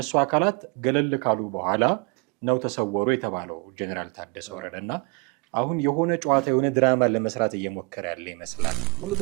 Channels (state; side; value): quieter; left; 30.8 dB